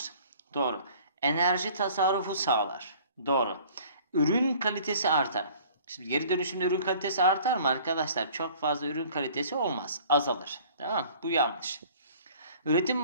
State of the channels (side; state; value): both; inverted; correlation -0.51